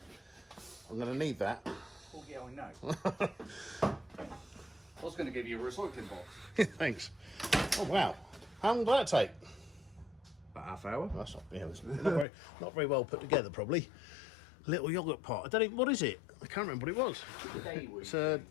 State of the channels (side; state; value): right; drops out; at 12.2 s